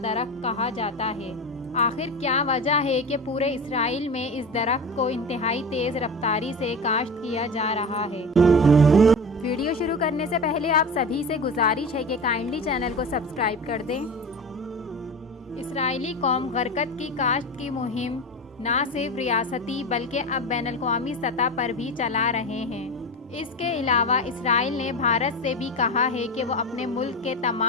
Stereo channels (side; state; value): both; normal; correlation 0.26